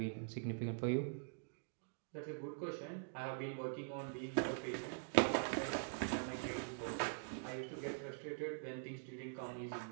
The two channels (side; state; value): left; silent; digital silence